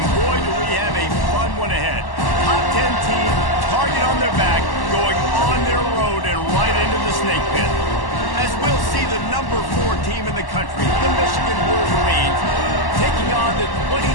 boy, do we have a fun one ahead. Top 10 team, target on their back, going on their road and right into the snake pit. As we'll see the number 4 team in the country, the Michigan Wolverines, taking on the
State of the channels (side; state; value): right; late; 1.1 ms